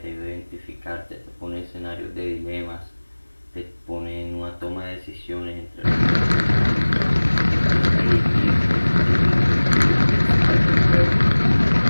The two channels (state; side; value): inverted; both; correlation -1.00